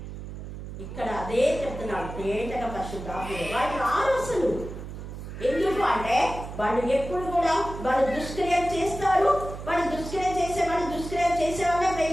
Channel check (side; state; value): right; noise; hum, 10 dB below the sound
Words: ఇక్కడ అదే చెప్తున్నాడు, తేటగా పరిశుద్ధాత్మ వాళ్ళు రారు అసలు. ఎందుకు అంటే వాళ్ళు ఎప్పుడు కూడా వాళ్ళు దుష్క్రియలు చేస్తారు. వాళ్ళు దుష్క్రియ చేసే వాళ్ళే